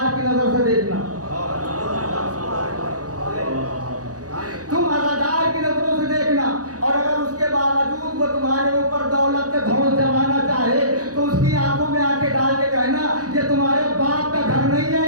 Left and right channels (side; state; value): left; late; 0.67 ms